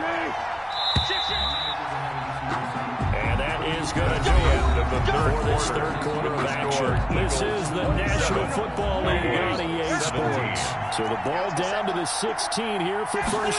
And that is going to do it for this third quarter of action. This is the National Football League on EA Sports. So the ball down to the 16 here for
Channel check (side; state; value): both; identical; correlation 1.00